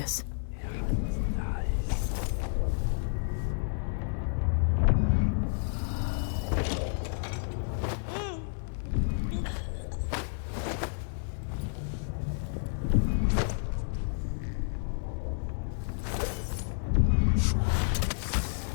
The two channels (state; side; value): silent; right; digital silence